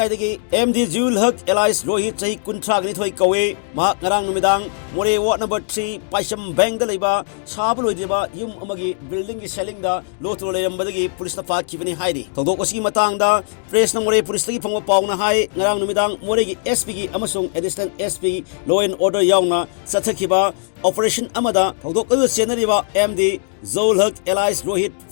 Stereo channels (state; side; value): silent; right; 66 dB below the other